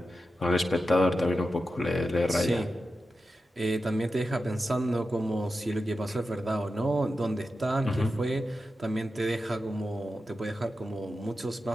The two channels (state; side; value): normal; both; correlation 0.91